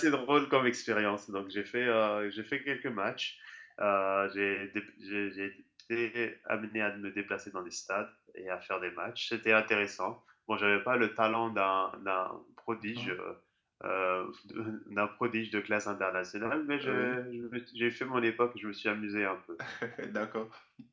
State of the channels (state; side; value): identical; both; correlation 1.00